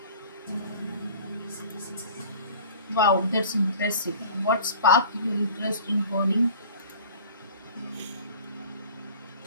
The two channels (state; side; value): inverted; both; correlation -0.44